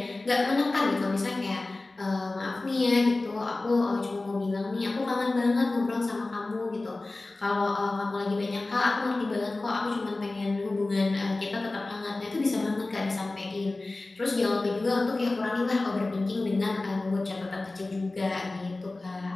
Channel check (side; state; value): right; quieter; 3.1 dB